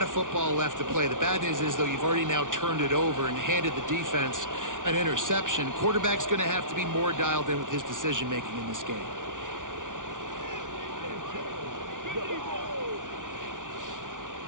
of football left to play. The bad news is, though, you've already now turned it over and handed the defense an interception. Quarterback's going to have to be more dialed in with his decision-making in this game.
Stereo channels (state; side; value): late; left; 0.88 ms